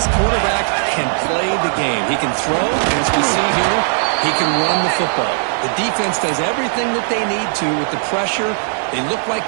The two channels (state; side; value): silent; left; 61 dB below the other